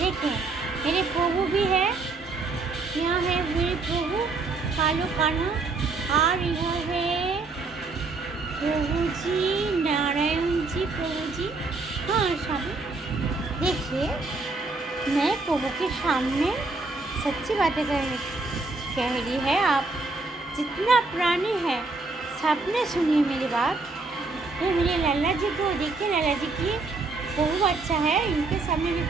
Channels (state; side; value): quieter; left; 3.7 dB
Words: मेरे प्रभु भी है। यहाँ है मेरे प्रभु कालू कान्हा और यह है प्रभु जी नारायण जी प्रभु जी। हाँ स्वामी देखिए मैं प्रभु के सामने सच्ची बातें कह रही है। आप जितना प्राणी है सबने सुनी मेरी बात। ये मेरे लाला जी को देखिए, लाला जी की बहुत अच्छा है, इनके सामने भी